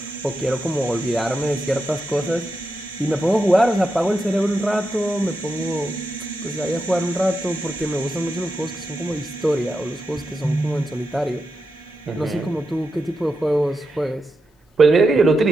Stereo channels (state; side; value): normal; both; correlation 0.87